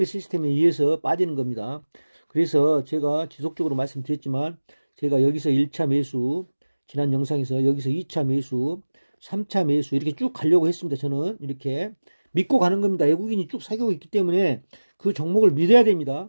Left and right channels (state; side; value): inverted; both; correlation -1.00